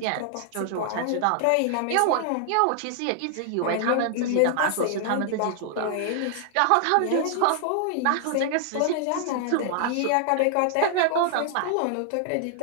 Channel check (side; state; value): both; different; correlation 0.00